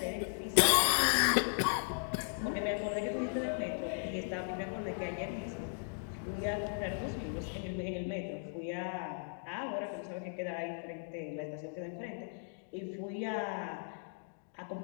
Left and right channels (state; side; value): silent; right; digital silence